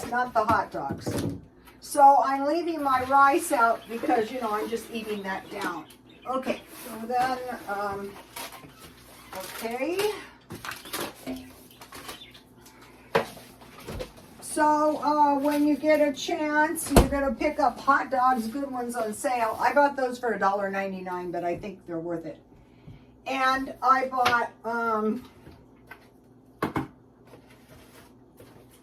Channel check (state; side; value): identical; both; correlation 1.00